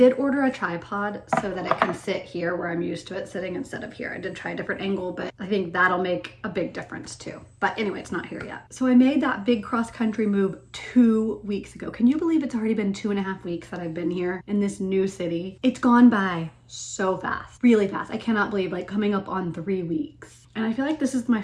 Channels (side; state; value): both; identical; correlation 1.00